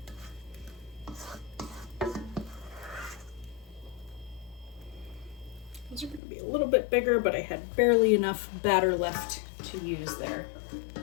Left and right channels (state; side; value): drops out; right; at 6.2 s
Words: These are going to be a little bit bigger, but I had barely enough batter left to use there.